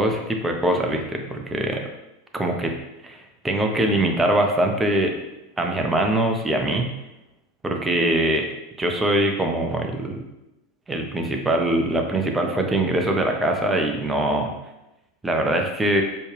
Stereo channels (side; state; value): both; normal; correlation 0.51